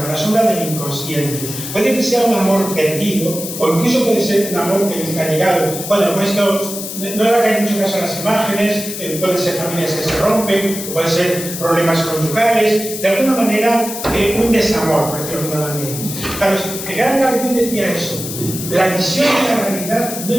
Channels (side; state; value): left; noise; hiss, 8 dB below the sound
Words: del inconsciente. Puede que sea un amor perdido, o incluso puede ser un amor que nunca ha llegado. Bueno, esto no le hagáis mucho caso a las imágenes, pueden ser familias que se rompen, pueden ser problemas conyugales, de alguna manera un desamor, por decirlo de alguna manera. Claro, el gran Carl Jung decía eso: la visión de la realidad no